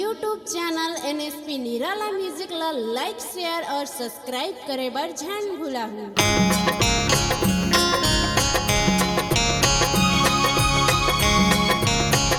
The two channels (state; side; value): identical; both; correlation 1.00